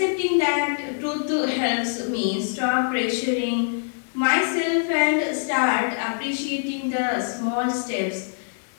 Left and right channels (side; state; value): right; silent; 63 dB below the other